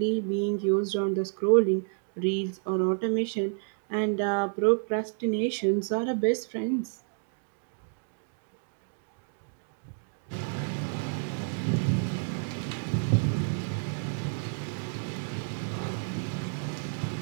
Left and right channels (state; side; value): silent; left; digital silence